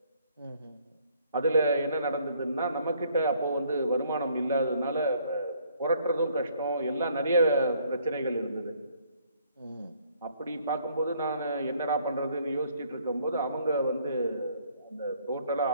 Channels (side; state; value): both; inverted; correlation -0.64